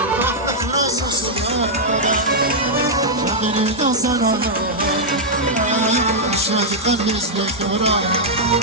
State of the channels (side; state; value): both; normal; correlation -0.06